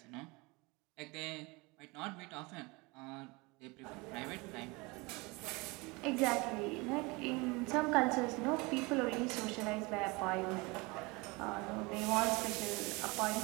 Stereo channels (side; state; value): left; quieter; 25.7 dB